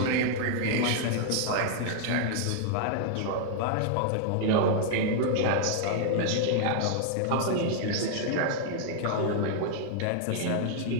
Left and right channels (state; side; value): different; both; correlation 0.00